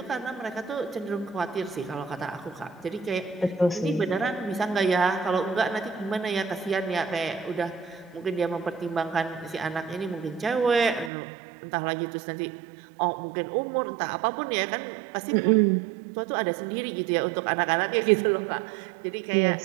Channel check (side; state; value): left; drops out; at 11.1 s